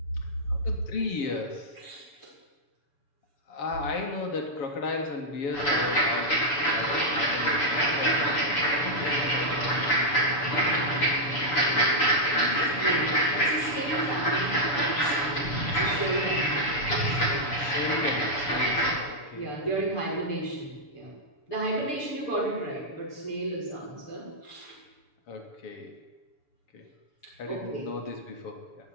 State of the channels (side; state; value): right; late; 6.9 ms